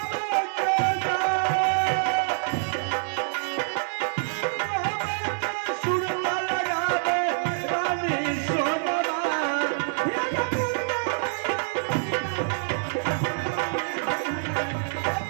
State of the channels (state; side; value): silent; left; digital silence